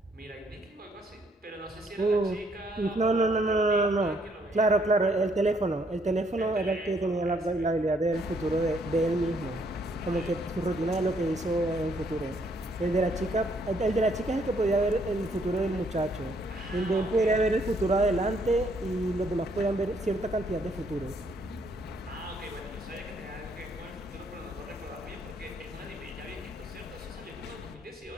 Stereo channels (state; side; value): normal; both; correlation 0.69